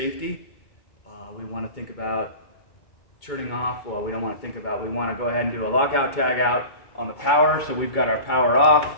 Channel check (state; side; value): late; right; 2.2 ms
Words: We want to think about turning off. Well, we don't want to think about. We want to go ahead and do a lockout tag out on the power. So we've got our power off.